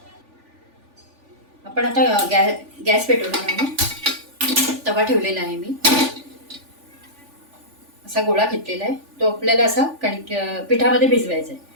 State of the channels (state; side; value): late; left; 3.4 ms